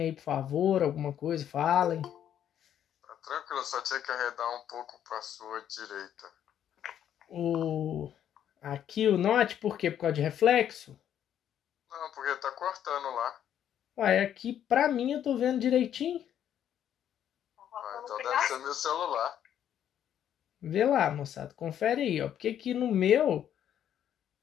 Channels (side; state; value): right; quieter; 10.1 dB